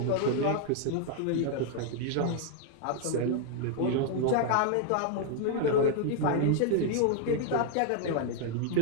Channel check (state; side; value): different; both; correlation 0.00